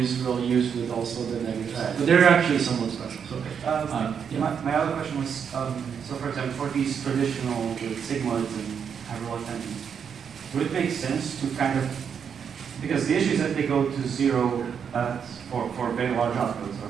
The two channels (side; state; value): left; quieter; 7.2 dB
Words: ReLUs with also the negative side. But they're actually somewhat special. So, yeah. My other question was, so for example, for these traditional sigmoids and hyperbolic tensions, would it make sense to kind of, because the issue is that they go to 0 for very large outputs or